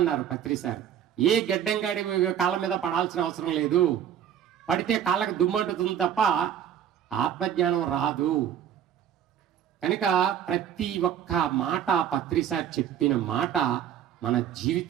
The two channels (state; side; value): quieter; left; 9.6 dB